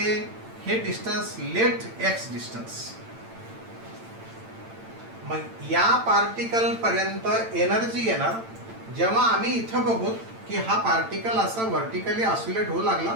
distance late x distance. मग या पार्टिकल पर्यंत एनर्जी येणार जेव्हा आम्ही इथं बघू की हा पार्टिकल असा व्हर्टिकली ऑसिलेट होऊ लागला.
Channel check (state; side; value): late; left; 8.9 ms